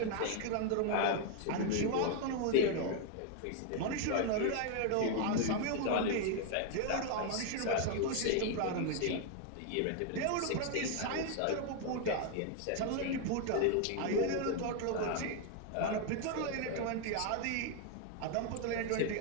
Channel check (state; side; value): different; both; correlation 0.00